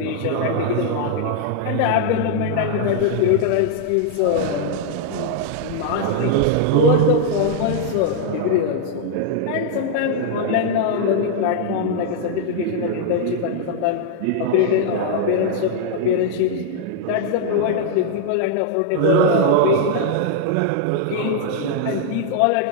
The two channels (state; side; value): different; both; correlation -0.01